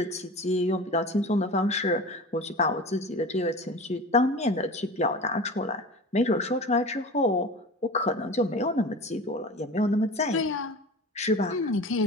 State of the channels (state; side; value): normal; both; correlation 0.34